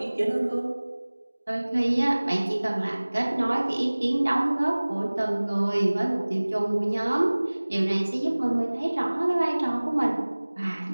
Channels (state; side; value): inverted; both; correlation -1.00